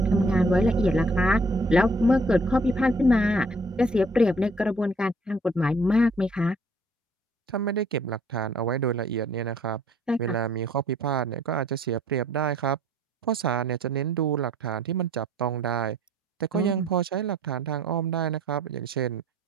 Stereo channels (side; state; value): both; normal; correlation 0.59